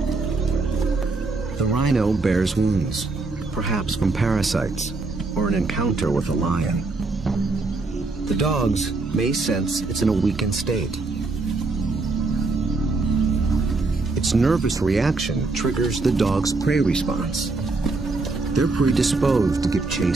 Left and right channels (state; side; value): quieter; left; 3.6 dB